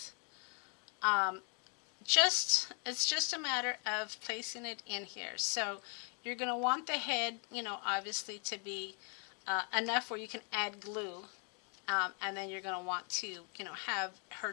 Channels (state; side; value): quieter; right; 38.6 dB